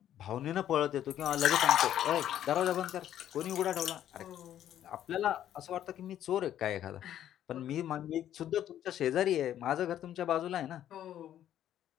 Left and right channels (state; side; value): quieter; right; 11.2 dB